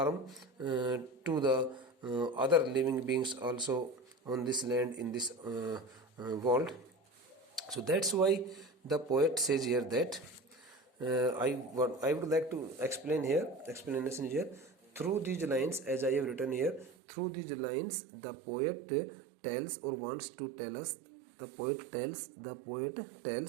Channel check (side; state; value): left; drops out; at 16.9 s